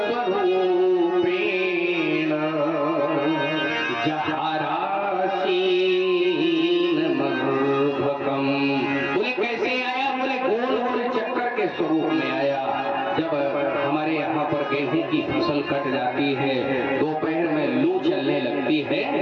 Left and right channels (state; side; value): identical; both; correlation 1.00